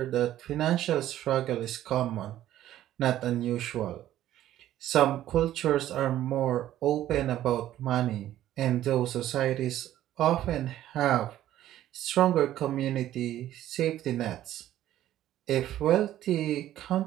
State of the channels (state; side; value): quieter; left; 12.9 dB